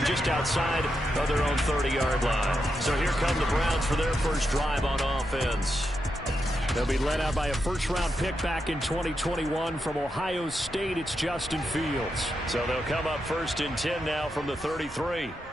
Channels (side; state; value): both; normal; correlation 0.85